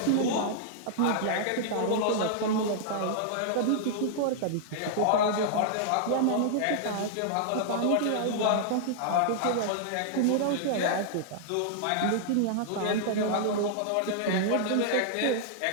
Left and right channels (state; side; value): different; both; correlation -0.01